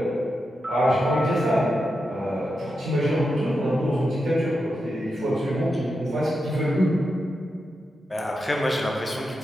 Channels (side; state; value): both; normal; correlation 0.88